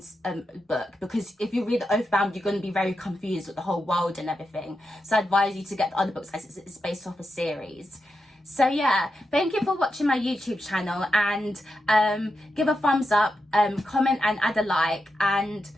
book, because if you read Oathbound, you're going to be very confused with the whole world and everything. So I advise you to get the other books as it's based off a series. So yeah, thank you for watching my YouTube channel, and give a thumbs up, comment and add a like, and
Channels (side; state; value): both; normal; correlation 0.87